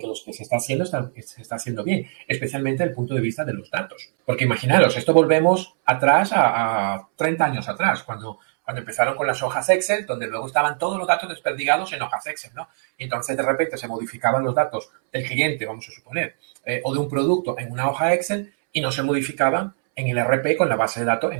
lo que se está haciendo se está haciendo bien, especialmente desde el punto de vista de los datos. Porque imaginaros, esto volvemos atrás a 30 años atrás, cuando Cuando empezaron con las hojas Excel, donde luego estaban todos los datos desperdigados en hojas Excel, ¿no? Y entonces de repente se modificaban los datos del cliente, vamos a suponer, o de un producto en una hoja Excel y no se modificaban en el RP con la base de datos, en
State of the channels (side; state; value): left; silent; 64 dB below the other